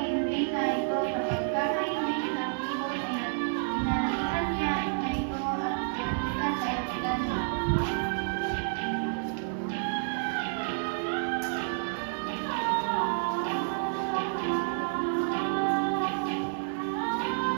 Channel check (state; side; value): silent; left; digital silence